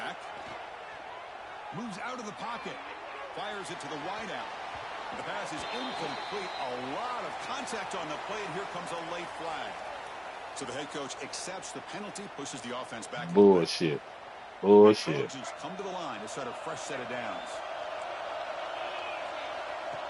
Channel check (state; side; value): identical; both; correlation 1.00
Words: Moves out of the pocket. Fires it to the wideout. The pass is incomplete. A lot of contact on the play, and here comes a late flag. So the head coach accepts the penalty, pushes the offense back. Bullshit. Bullshit. The Trojans come to the line to start a fresh set of downs.